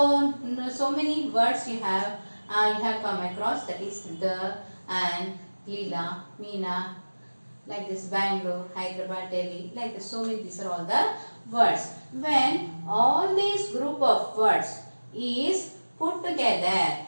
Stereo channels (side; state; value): both; inverted; correlation -1.00